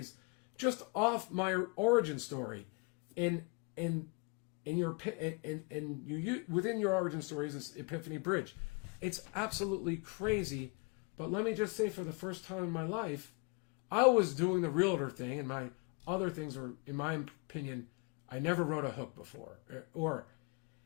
just off my origin story. And you within your origin story is this epiphany bridge. It's absolutely crazy. But let me just say, for the first time in my life, I was doing the realtor thing, and my other things were, in my opinion, I never wrote a hook before.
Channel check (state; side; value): quieter; right; 30.2 dB